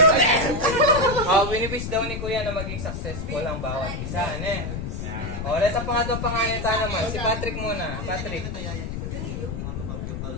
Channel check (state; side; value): noise; left; rumble, 5 dB below the sound